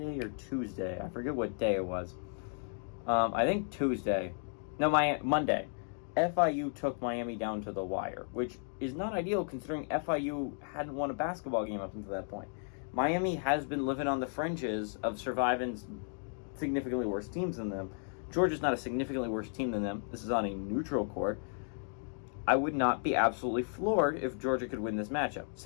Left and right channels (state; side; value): silent; right; 55 dB below the other